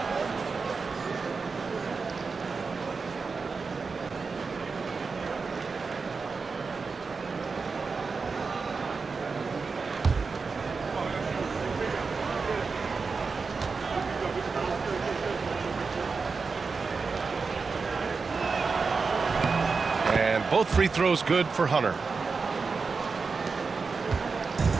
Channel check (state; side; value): quieter; left; 4.7 dB